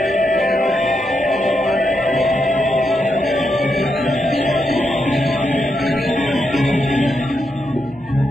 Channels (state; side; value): normal; both; correlation 0.83